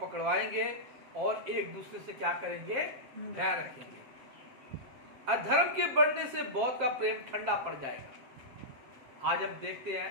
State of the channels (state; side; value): late; left; 7.8 ms